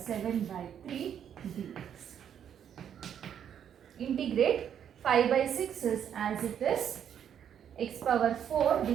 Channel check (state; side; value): quieter; left; 9.0 dB